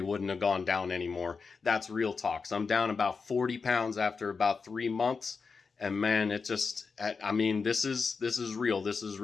have gone down anymore. That's real talk. So I'm down about 40 pounds after about 3 months. And man, it just, I mean, this is real. This is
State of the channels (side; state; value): right; quieter; 5.0 dB